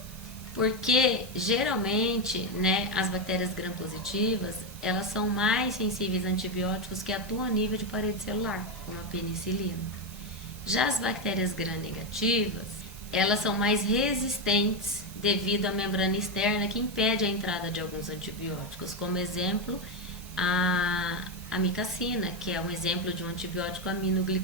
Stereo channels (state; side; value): noise; right; hiss, 18 dB below the sound